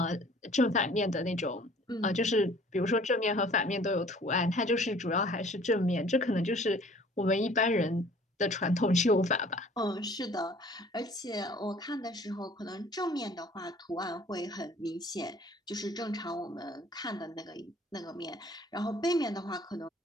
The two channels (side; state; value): both; normal; correlation 0.52